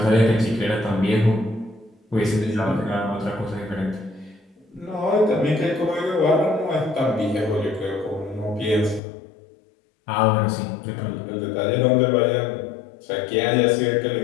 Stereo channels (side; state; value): right; drops out; at 9.0 s